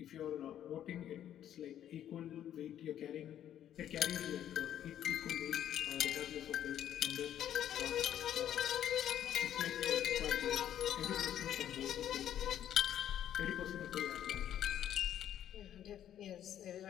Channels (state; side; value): quieter; right; 10.8 dB